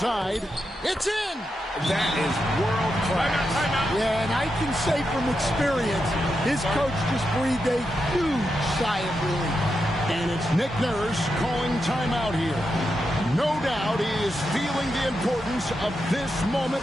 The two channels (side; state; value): both; normal; correlation 0.86